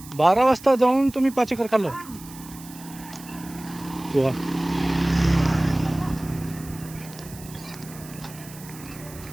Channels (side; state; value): right; noise; hiss, 18 dB below the sound